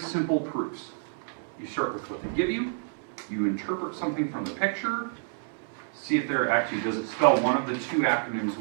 proofs. You start with what they give you. You interpret something from the picture. See if there actually does it spell one of the two acronyms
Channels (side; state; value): left; silent; 59 dB below the other